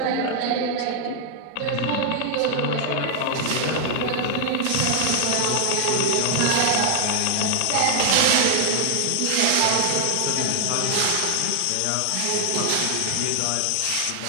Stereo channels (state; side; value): different; both; correlation 0.00